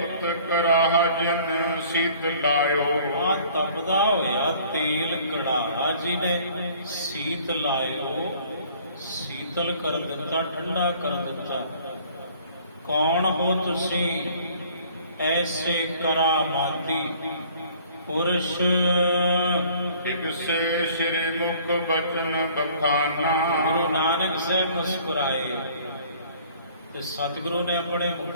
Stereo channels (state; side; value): inverted; both; correlation -0.54